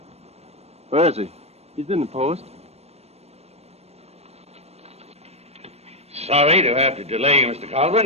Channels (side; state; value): left; late; 0.31 ms